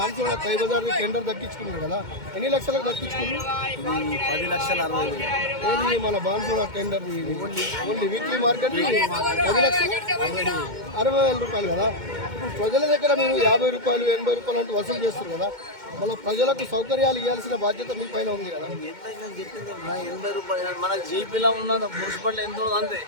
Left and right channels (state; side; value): late; left; 2.1 ms